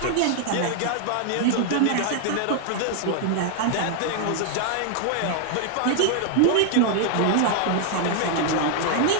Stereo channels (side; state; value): both; different; correlation 0.00